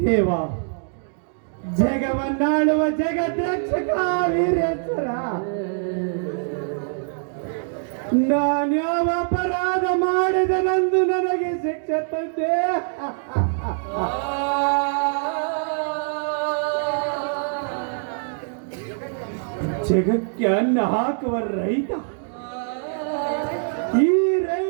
ದೇವ, ಜಗವನ್ನಾಳುವ ಜಗದ್ರಕ್ಷಕ ವೀರೇಶ್ವರ, ನಾನ್ಯಾವ ಅಪರಾಧ ಮಾಡಿದನೆಂದು ನನಗೆ ಶಿಕ್ಷೆ ತಂದೆ. ಜಗಕ್ಕೆ ಅನ್ನ ಹಾಕುವ ರೈತ, ಈ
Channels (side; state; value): left; silent; digital silence